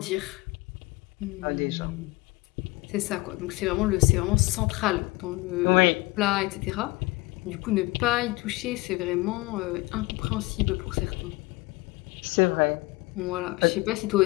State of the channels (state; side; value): quieter; right; 22.8 dB